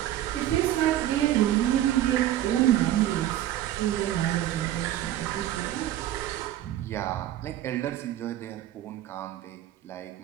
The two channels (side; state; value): left; quieter; 13.0 dB